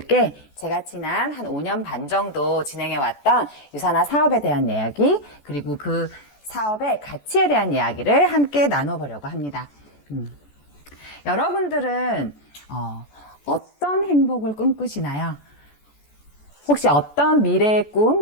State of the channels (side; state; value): right; late; 14 ms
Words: 제가 지난 한 5년 반 정도 진행해왔던 유사나 사업에 대한 이야기, 그리고 그 사업의 가치에 대한 이야기를 함께 나눠보려고 합니다. 여러분들은 어떤 행복을 꿈꾸시나요? 혹시 어떤 미래의